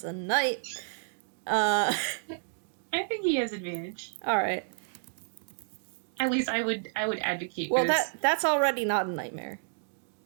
a night. I think he has advantage. All right. At least I would advocate. Well, that's already not a nightmare.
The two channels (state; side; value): silent; left; digital silence